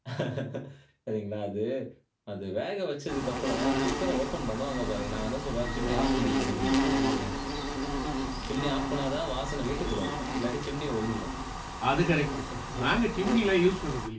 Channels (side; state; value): both; identical; correlation 1.00